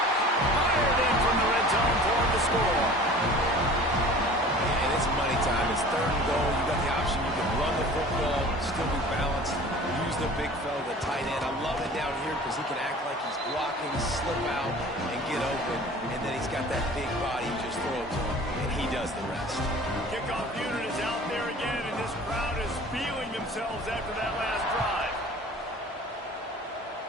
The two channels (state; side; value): normal; both; correlation 0.44